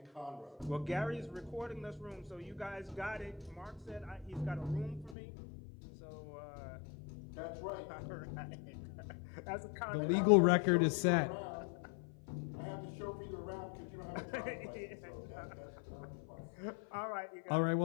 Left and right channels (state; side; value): drops out; right; at 5.2 s